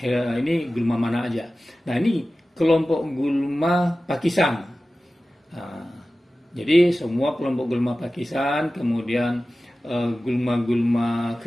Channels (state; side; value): normal; both; correlation 0.96